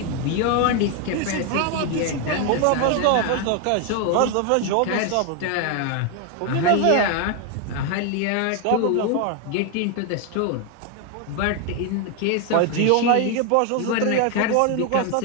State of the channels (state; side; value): different; both; correlation 0.01